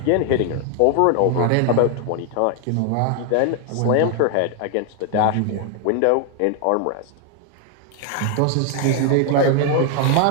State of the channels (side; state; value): both; different; correlation 0.00